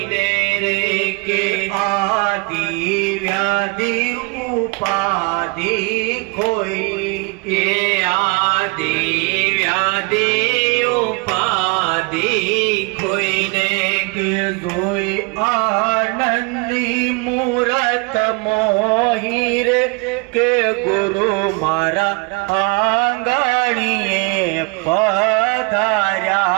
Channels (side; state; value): left; quieter; 29.6 dB